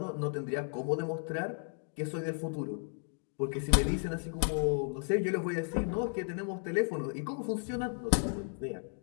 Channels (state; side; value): silent; right; 55 dB below the other